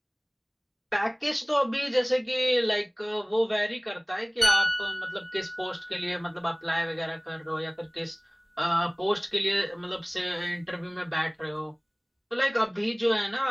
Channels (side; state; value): both; identical; correlation 1.00